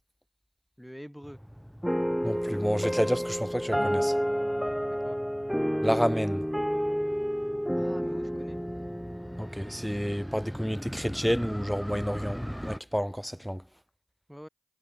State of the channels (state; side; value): identical; both; correlation 1.00